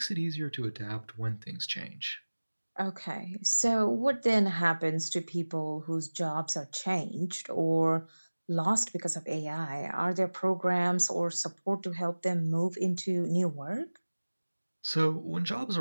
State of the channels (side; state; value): both; inverted; correlation -1.00